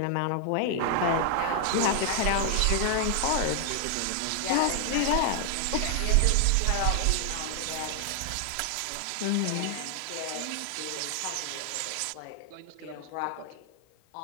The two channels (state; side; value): different; both; correlation 0.00